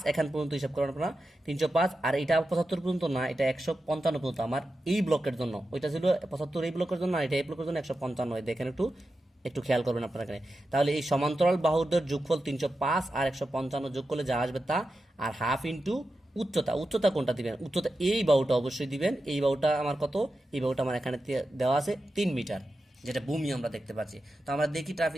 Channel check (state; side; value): normal; both; correlation 0.90